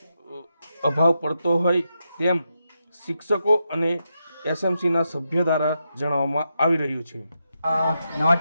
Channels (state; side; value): inverted; both; correlation -0.85